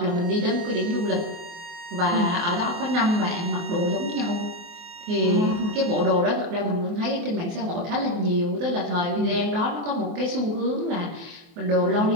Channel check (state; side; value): late; left; 24 ms